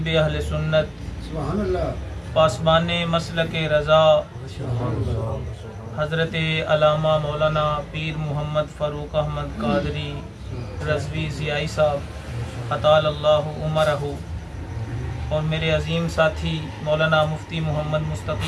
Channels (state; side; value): identical; both; correlation 1.00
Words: اہل سنت پاسبان مسلک رضا حضرت علامہ مولانا پیر محمد فاروق احمد قادری رضوی ضیائی صاحب اطال اللہ عمرہ اور میرے عظیم ساتھی مولانا مفتی محمد